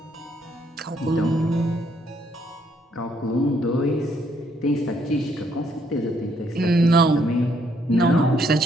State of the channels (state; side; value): normal; both; correlation 0.71